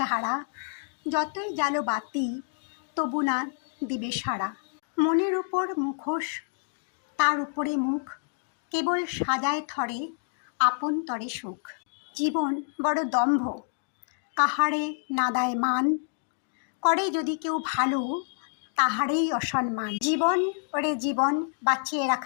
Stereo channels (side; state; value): right; silent; digital silence